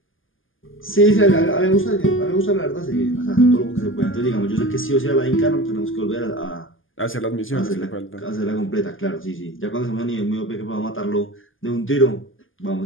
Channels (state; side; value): late; right; 0.58 ms